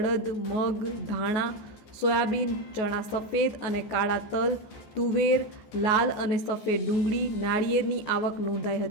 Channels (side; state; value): right; late; 14 ms